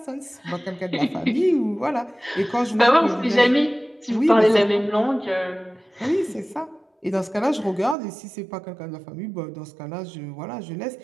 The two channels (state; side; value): drops out; left; at 8.0 s